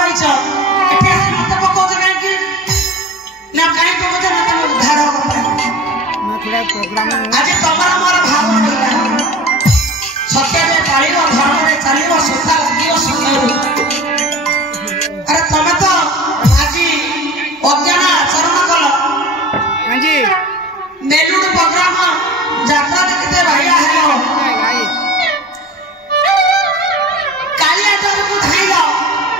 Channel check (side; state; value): both; normal; correlation 0.38